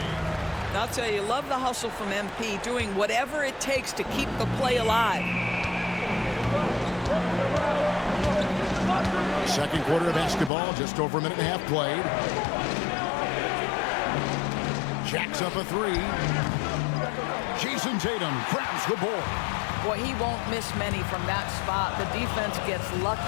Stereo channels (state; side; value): drops out; right; at 10.5 s